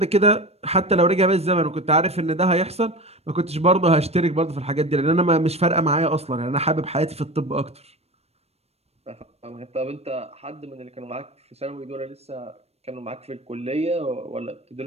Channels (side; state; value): left; late; 0.30 ms